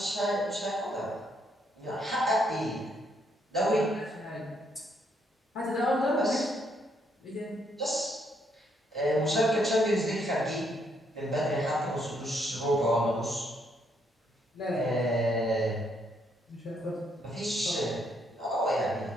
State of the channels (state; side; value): normal; both; correlation 0.73